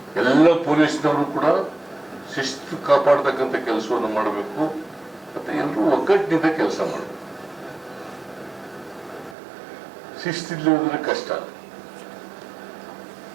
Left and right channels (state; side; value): drops out; left; at 9.3 s